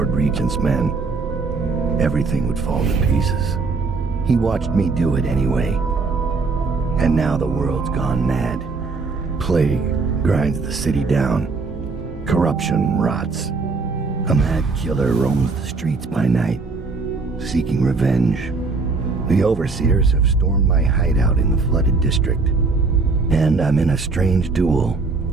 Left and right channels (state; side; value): quieter; left; 4.1 dB